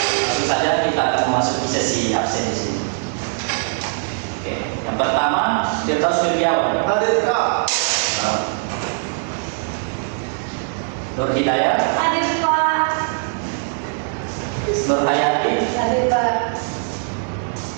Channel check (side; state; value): left; silent; 65 dB below the other